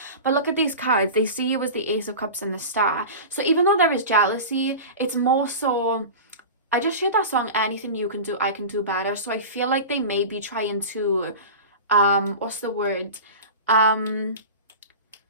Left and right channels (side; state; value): both; inverted; correlation -0.30